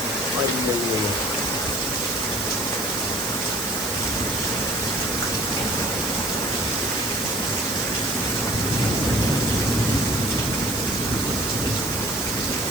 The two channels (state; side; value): noise; right; hiss, 6 dB below the sound